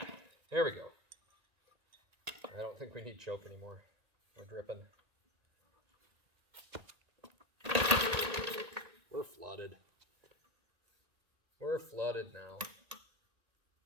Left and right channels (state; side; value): late; left; 1.8 ms